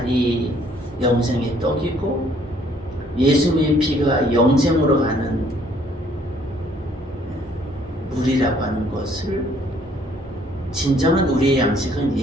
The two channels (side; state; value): both; normal; correlation 0.62